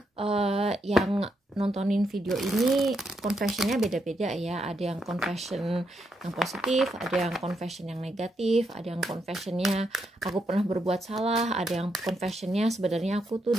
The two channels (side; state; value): both; normal; correlation 0.80